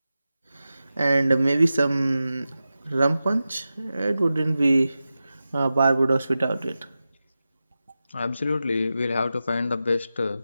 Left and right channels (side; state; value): both; inverted; correlation -0.93